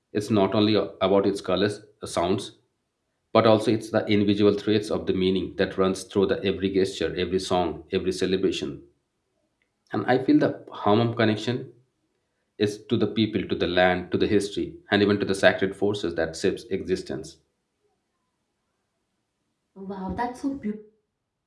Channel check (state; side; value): identical; both; correlation 1.00